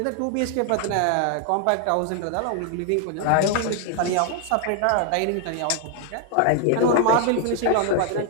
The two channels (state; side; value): different; both; correlation 0.00